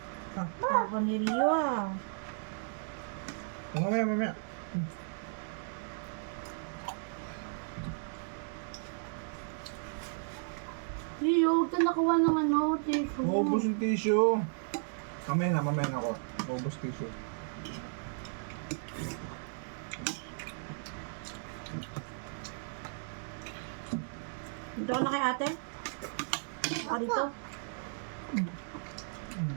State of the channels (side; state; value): left; silent; digital silence